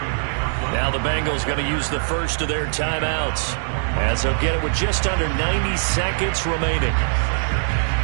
Now the Bengals going to use the first of their timeouts, as they'll get it with just under 90 seconds remaining.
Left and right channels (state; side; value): silent; left; 64 dB below the other